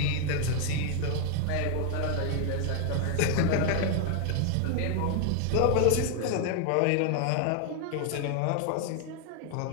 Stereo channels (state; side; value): different; both; correlation 0.00